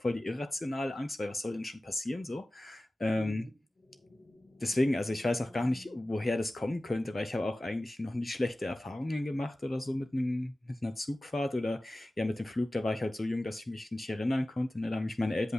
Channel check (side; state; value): both; normal; correlation 0.96